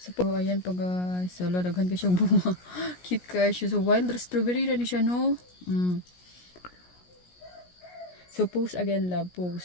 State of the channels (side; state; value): right; late; 17 ms